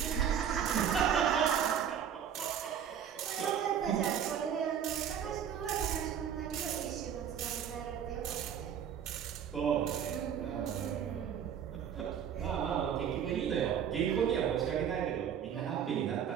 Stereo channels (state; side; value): quieter; left; 8.6 dB